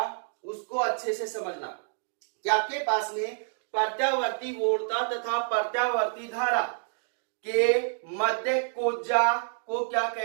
उसको अच्छे से समझना कि आपके पास में प्रत्यावर्ती वोल्टता तथा प्रत्यावर्ती धारा के मध्य कोज्जा को क्या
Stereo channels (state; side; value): silent; left; digital silence